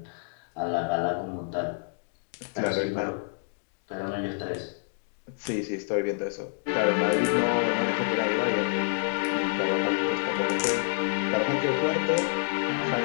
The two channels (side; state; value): right; silent; digital silence